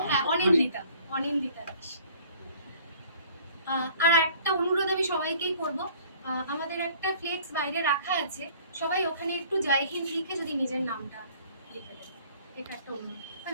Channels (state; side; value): inverted; both; correlation -0.54